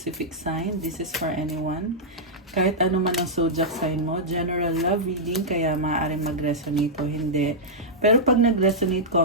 sign. This is for anyone. Kahit ano man ang zodiac sign mo, general love reading, kaya maaaring mag-resonate o hindi. Pero pag nag-resonate,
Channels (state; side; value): normal; both; correlation -0.09